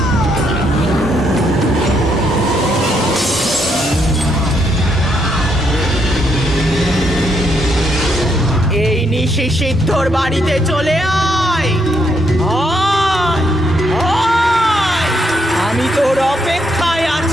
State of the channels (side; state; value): both; normal; correlation 0.75